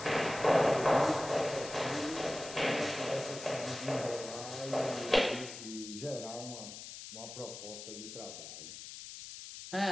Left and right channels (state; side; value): noise; left; hiss, 11 dB below the sound